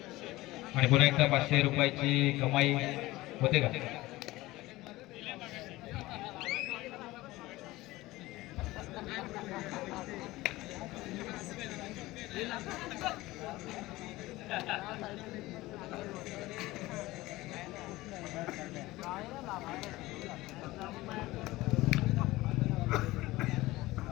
आणि पुन्हा एकदा 500 रुपयाची कमाई होते का?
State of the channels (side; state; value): right; quieter; 18.8 dB